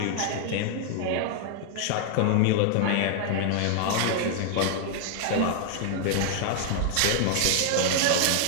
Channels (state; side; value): different; both; correlation 0.00